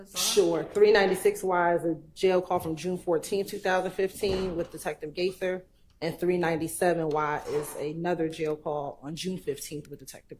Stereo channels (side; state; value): both; identical; correlation 1.00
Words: are? Sure. 396Y is a jail call from June 14, 2015 with Detective Gaither, and 397Y is another jail call on June 15th with Detective